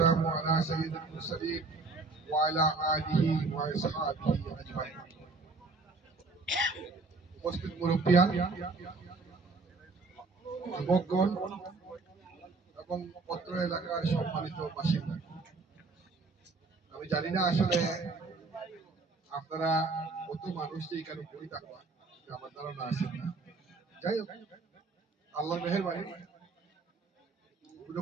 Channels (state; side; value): quieter; left; 3.9 dB